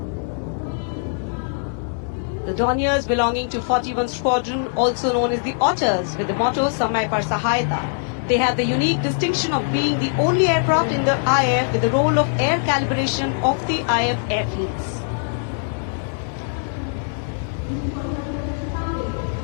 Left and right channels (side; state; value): right; silent; digital silence